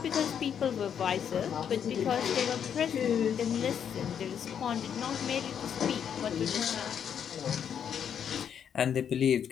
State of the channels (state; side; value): quieter; right; 8.3 dB